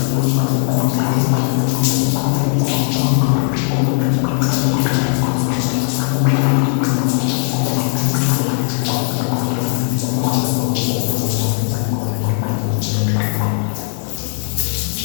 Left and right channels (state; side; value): silent; right; 62 dB below the other